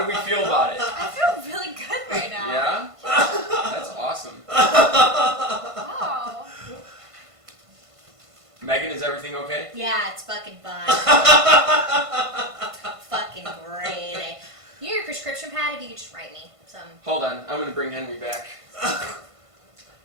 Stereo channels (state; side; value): late; left; 1.5 ms